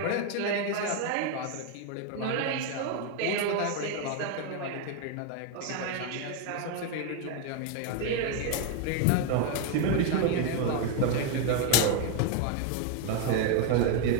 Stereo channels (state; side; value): different; both; correlation 0.01